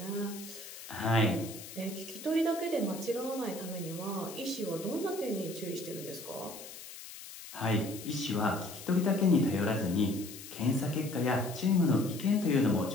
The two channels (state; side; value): noise; left; hiss, 13 dB below the sound